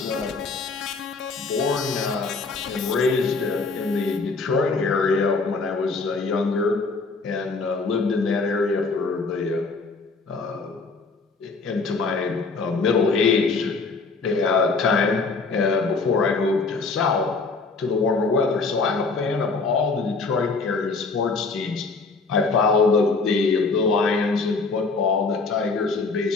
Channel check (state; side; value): quieter; right; 4.1 dB